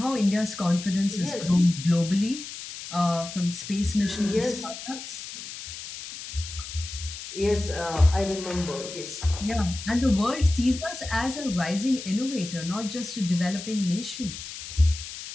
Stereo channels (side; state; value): left; noise; hiss, 10 dB below the sound